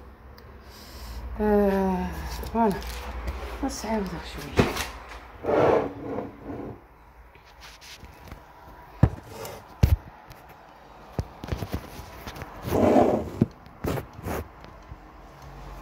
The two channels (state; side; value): identical; both; correlation 1.00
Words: فوالا سعودها شويه.